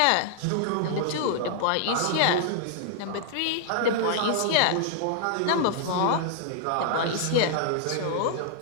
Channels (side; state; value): both; different; correlation -0.01